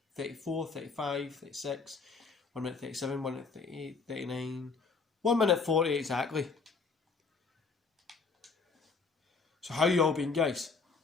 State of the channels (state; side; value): quieter; right; 4.7 dB